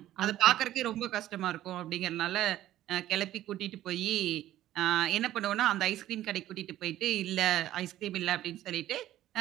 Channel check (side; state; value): left; quieter; 13.6 dB